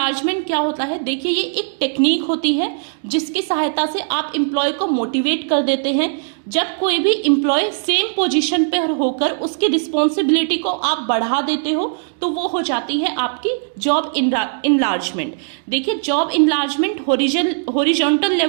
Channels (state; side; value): silent; left; digital silence